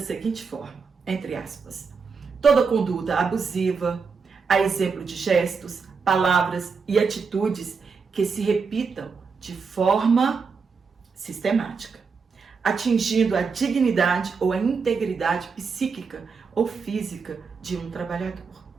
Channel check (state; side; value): quieter; left; 5.2 dB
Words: seguinte forma, entre aspas, toda conduta abusiva, a exemplo de gestos, palavras e atitudes que se repitam de forma sistemática, atingindo a dignidade ou a integridade psíquica ou física de um trabalhador.